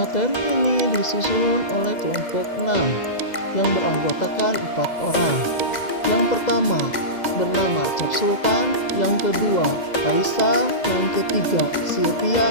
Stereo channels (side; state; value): right; late; 2.0 ms